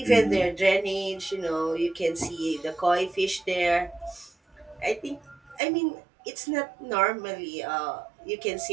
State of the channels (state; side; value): drops out; left; at 5.6 s